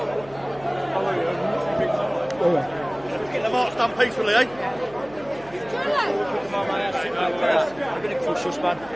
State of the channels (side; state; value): right; noise; hum, 22 dB below the sound